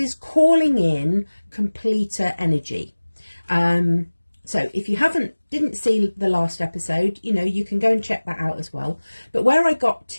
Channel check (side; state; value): both; inverted; correlation -1.00